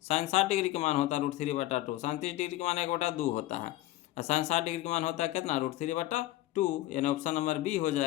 साइन 60 डिग्री का मान होता है √3/2। साइन 30 डिग्री का मान 1/2 होता है। और साइन 60 डिग्री का मान होता है कितना? √3/2, यानी ऑप्शन नंबर बी हो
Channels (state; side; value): quieter; right; 16.1 dB